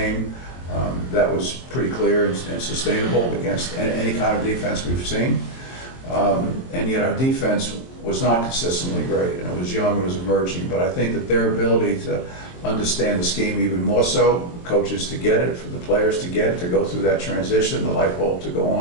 That was pretty clear and sustainable against any kind of defense we've seen. And yet our defense was not consistently great, and it was young, it was emerging, but I think that their ability to understand the scheme even more so, coaches to get it, for the players to get it, to go through that transition, the light bulb to go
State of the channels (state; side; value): late; right; 23 ms